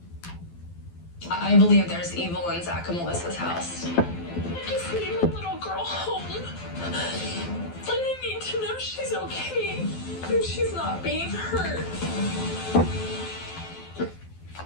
I believe there's evil in Zach and Melissa's house. I just need my little girl home. And I need to know she's okay and she's not being hurt.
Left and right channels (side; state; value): right; late; 12 ms